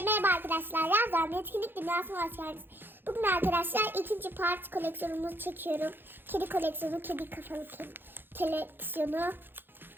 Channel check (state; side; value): late; left; 0.099 ms